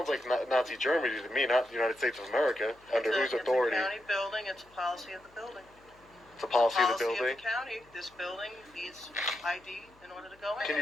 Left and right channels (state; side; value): noise; left; hum, 29 dB below the sound